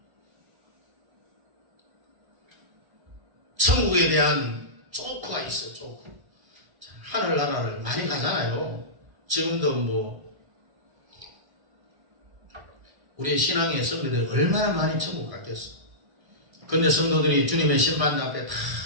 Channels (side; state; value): left; late; 1.1 ms